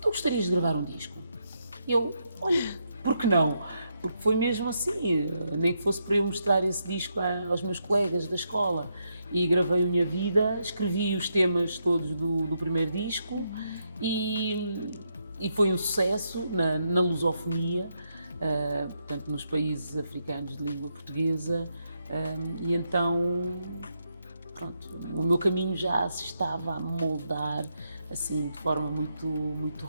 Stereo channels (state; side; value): inverted; both; correlation -0.80